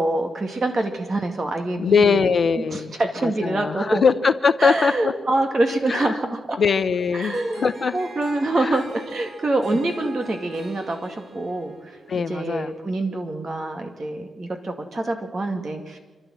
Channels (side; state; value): both; normal; correlation 0.85